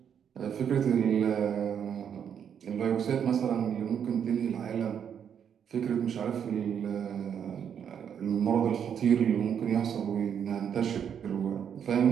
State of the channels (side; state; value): left; quieter; 8.2 dB